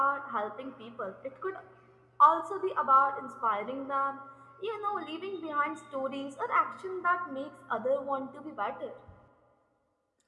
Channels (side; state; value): both; identical; correlation 1.00